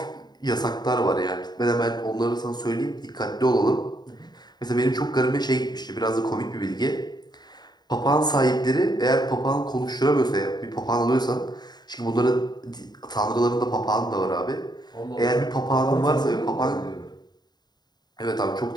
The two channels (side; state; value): right; late; 0.20 ms